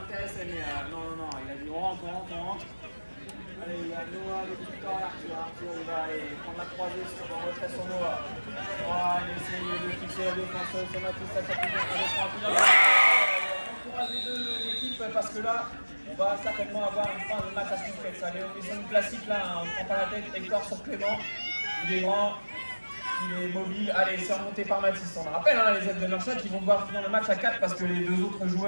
mais non, il a dit on rentre. Allez, il y a Noah, Victor, Arthur, il va aller prendre la croisée sur le retrait sur Noah. Il essaye de fixer la défense, c'est Mathis, ça fait bien, on encourage les 2 équipes parce que là, on va certainement avoir une fin de match à suspense. Allez, on est sur une classique là, on ne prend pas la tête, Hector sur Clément, il est grand, il est mobile. Allez, c'est remonté par Mathis. On rappelle les aides de Merchat qui vont devoir finir le match à 4 parce que les 2 autres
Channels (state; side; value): inverted; both; correlation -1.00